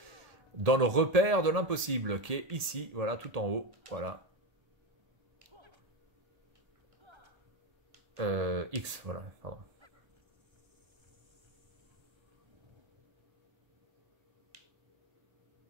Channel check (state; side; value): late; left; 1.7 ms